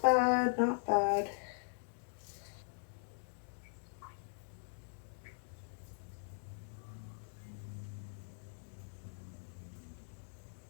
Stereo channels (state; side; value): silent; right; digital silence